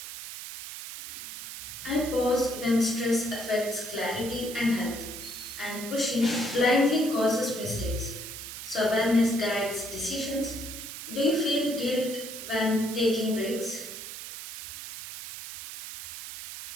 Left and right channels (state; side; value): noise; right; hiss, 10 dB below the sound